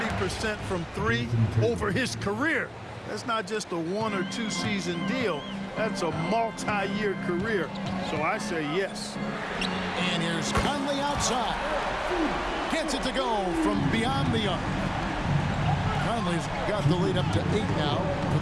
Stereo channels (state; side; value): identical; both; correlation 1.00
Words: from 3 over his career. That's not just a 1 or 2 season deal. That's a multi-year career. So I say yes. And here's Conley outside. Gets it to go from beyond the arc. Conley's got the lead up to 8 now for